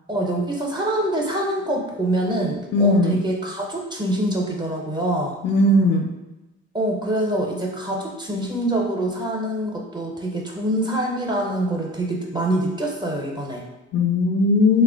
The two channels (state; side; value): normal; both; correlation 0.38